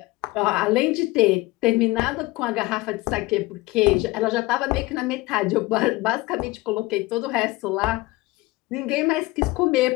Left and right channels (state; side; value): quieter; right; 20.9 dB